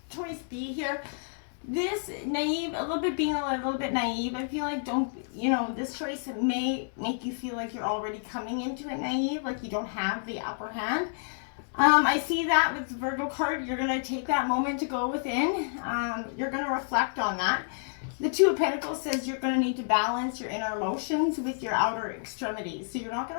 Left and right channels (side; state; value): right; silent; digital silence